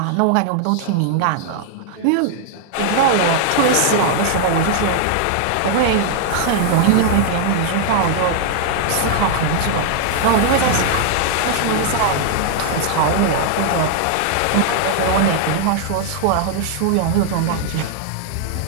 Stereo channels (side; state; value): both; different; correlation -0.01